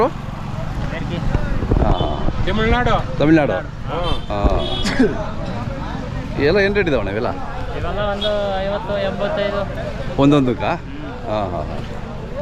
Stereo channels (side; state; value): both; identical; correlation 1.00